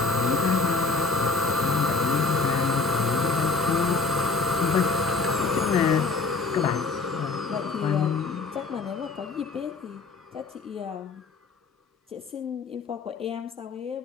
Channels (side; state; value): right; quieter; 4.2 dB